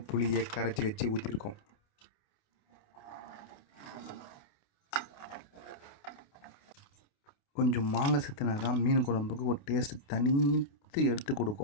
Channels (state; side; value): late; right; 28 ms